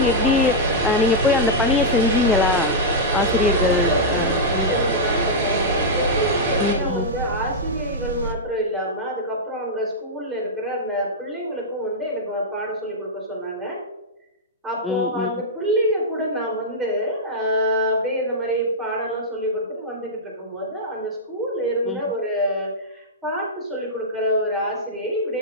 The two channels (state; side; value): normal; both; correlation -0.08